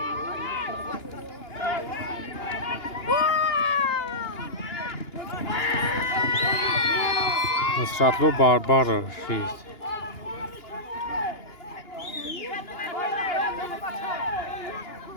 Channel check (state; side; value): late; right; 2.9 ms